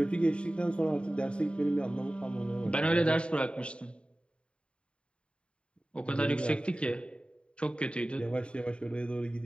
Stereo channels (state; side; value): late; right; 0.055 ms